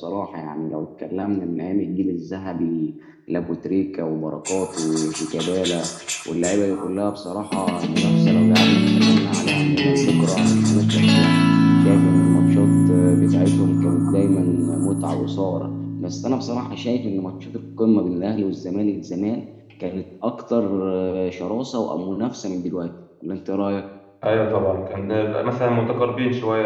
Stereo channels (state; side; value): identical; both; correlation 1.00